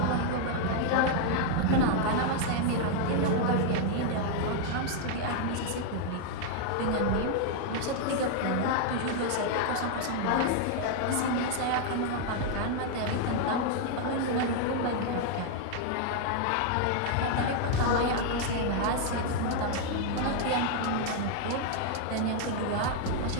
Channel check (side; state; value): both; different; correlation 0.00